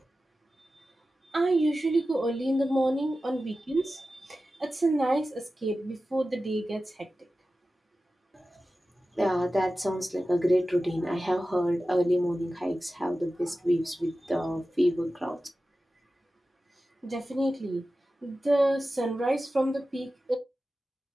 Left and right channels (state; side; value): normal; both; correlation 0.94